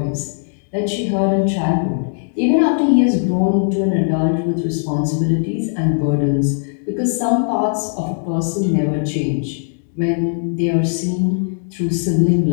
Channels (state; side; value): silent; right; digital silence